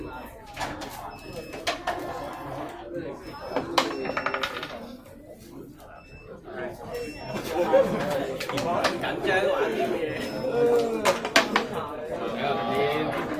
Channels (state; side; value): identical; both; correlation 1.00